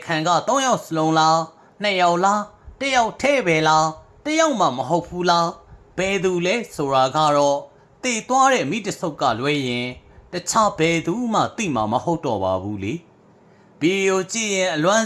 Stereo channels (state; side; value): identical; both; correlation 1.00